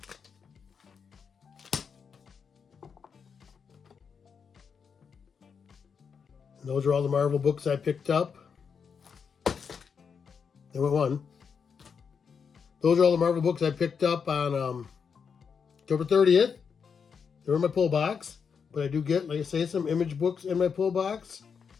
And those are all the Marvel books I picked up. There went one. Those are all the Marvel books I picked up on October 30th. They're in my pull box. But I do get, like I say, some Image books in my pull box.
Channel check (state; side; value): quieter; right; 6.3 dB